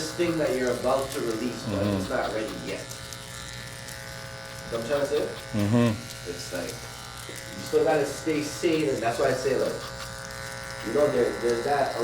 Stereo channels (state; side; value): identical; both; correlation 1.00